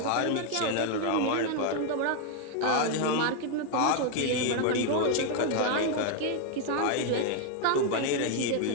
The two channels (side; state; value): both; different; correlation 0.01